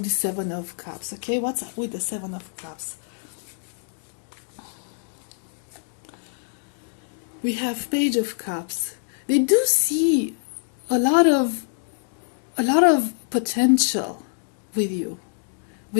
the Seven of Cups, okay? What's up with the Seven of Cups? We have Page of Cups. They do see a lot of potential with you,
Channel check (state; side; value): silent; right; digital silence